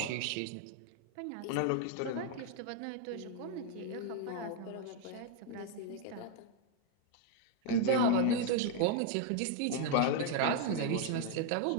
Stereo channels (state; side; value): different; both; correlation 0.00